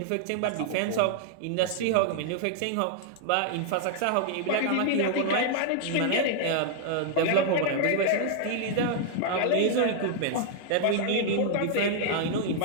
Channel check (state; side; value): different; both; correlation -0.01